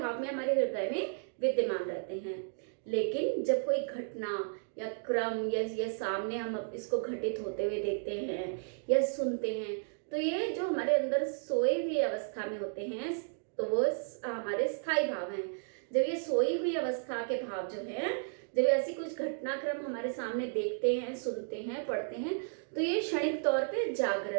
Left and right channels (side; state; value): left; silent; digital silence